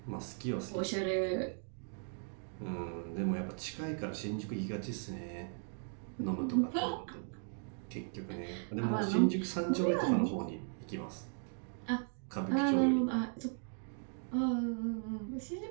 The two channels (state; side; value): silent; left; 53 dB below the other